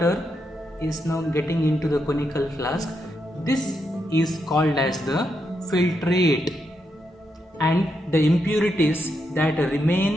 is now getting into the conical flask. This is called as the filtrate, and the impurities that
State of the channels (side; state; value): both; normal; correlation 0.82